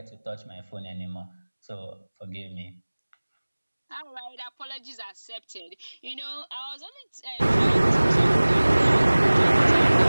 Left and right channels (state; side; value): inverted; both; correlation -1.00